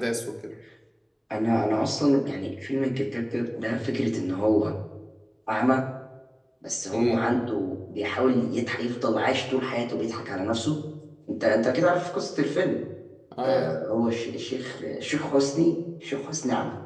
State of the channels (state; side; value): identical; both; correlation 1.00